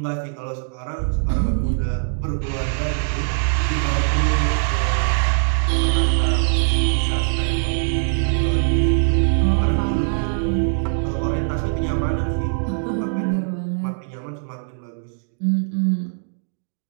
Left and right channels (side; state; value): left; silent; digital silence